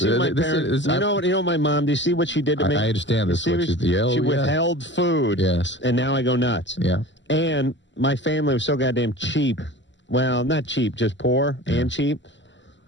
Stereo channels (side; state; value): right; late; 0.53 ms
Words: my parents? You know my mom. Do you see what she did to me? I understand this. She withheld food. Yes. And now I go nuts. Yeah. And my family was so goddamn cheap. Well, not cheap, just poor and cheap.